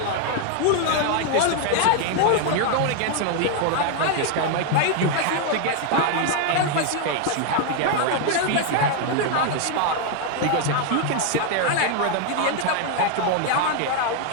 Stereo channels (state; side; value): different; both; correlation 0.00